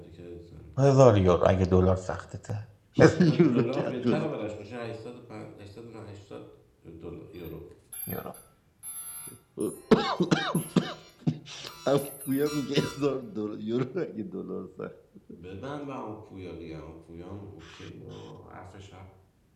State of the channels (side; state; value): both; identical; correlation 1.00